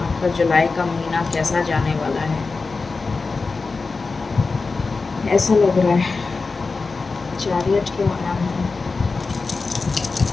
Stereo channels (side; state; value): right; quieter; 4.1 dB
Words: आपका जुलाई का महीना कैसा जाने वाला है, ऐसा लग रहा है. चैरियट क्यों आया है.